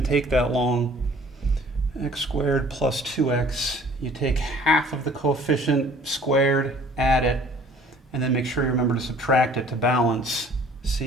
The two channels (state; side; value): normal; both; correlation 0.53